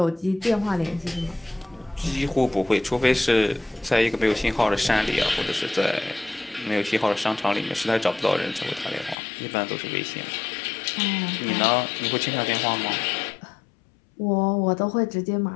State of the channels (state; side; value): drops out; right; at 9.2 s